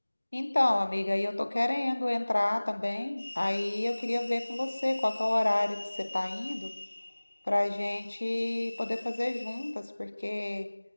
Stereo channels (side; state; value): both; inverted; correlation -1.00